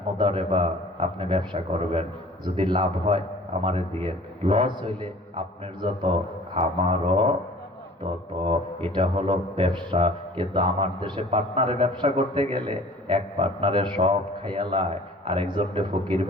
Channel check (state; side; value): normal; both; correlation 0.48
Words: মুদারাবা, আপনি ব্যবসা করবেন, যদি লাভ হয় আমারে দিয়ে, লস হইলে আপনার যত আমারও তত। এটা হলো ব্যবসা। কিন্তু আমার দেশে পার্টনারে ব্যবসা করতে গেলে এক পার্টনারে সব খাইয়ালায়, আরেকজনকে ফকির